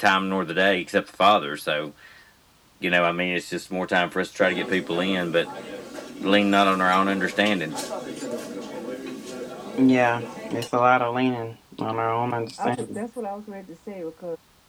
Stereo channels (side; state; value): both; identical; correlation 1.00